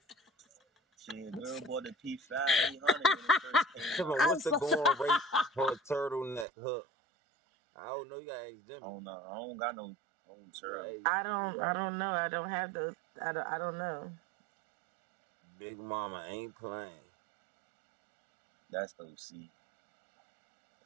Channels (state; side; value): drops out; left; at 6.5 s